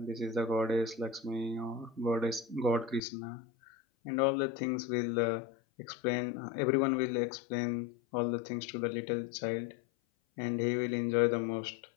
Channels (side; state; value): right; drops out; at 3.0 s